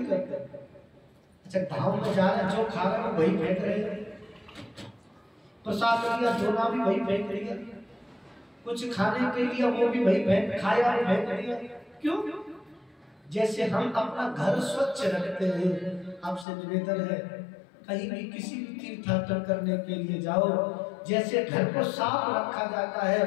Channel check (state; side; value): drops out; right; at 16.4 s